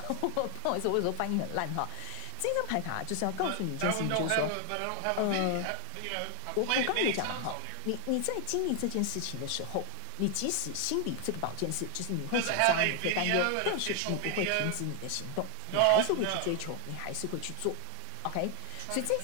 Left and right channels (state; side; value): different; both; correlation 0.00